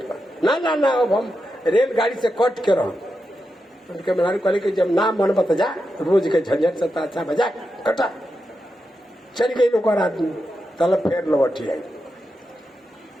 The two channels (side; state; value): both; normal; correlation 0.87